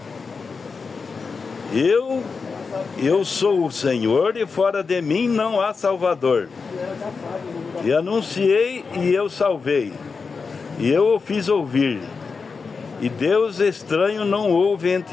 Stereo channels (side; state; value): right; quieter; 4.9 dB